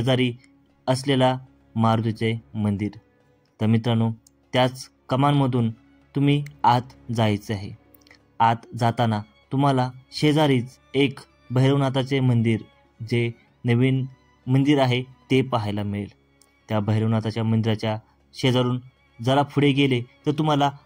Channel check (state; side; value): identical; both; correlation 1.00